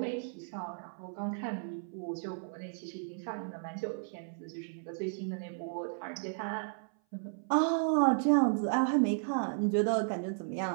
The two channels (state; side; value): silent; left; 55 dB below the other